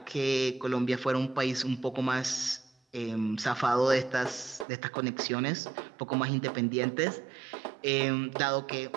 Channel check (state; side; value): drops out; left; at 4.7 s